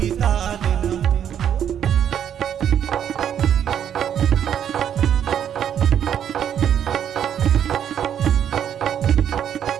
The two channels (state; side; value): quieter; left; 9.3 dB